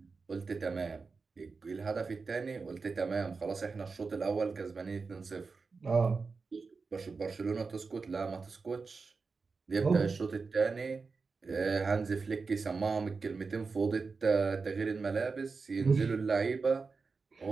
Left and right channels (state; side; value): quieter; left; 4.5 dB